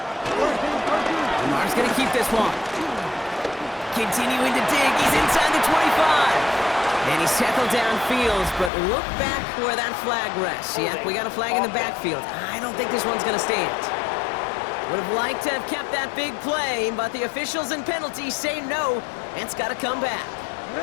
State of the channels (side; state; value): right; drops out; at 8.7 s